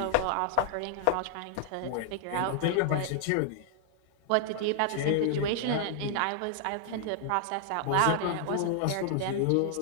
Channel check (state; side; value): different; both; correlation 0.00